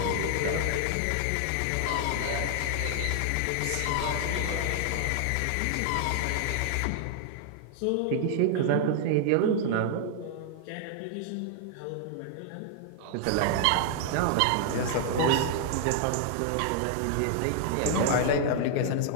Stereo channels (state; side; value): different; both; correlation 0.00